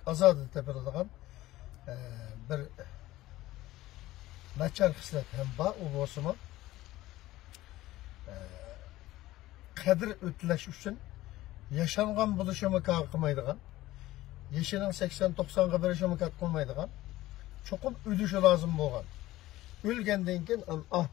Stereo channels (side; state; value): right; quieter; 16.6 dB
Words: ozod topiladigan bir nachar hislat ham bor. U bo'lsa-mu qadr o'tlash uchun yashangan bo'lishi mumkin qilmaydigan, yashining 80-90 ga berishi mumkin qilmaydigan, cho'qim o'lishi lozim bo'lgan, o'lgandan keyin